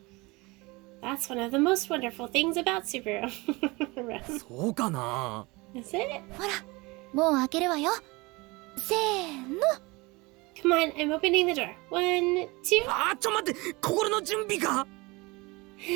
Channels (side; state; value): left; quieter; 24.2 dB